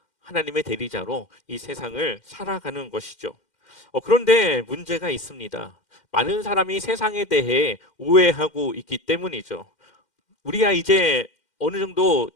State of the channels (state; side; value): late; right; 2.1 ms